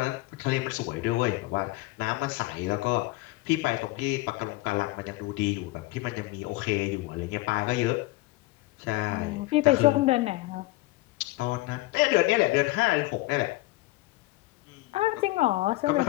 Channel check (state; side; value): quieter; right; 19.8 dB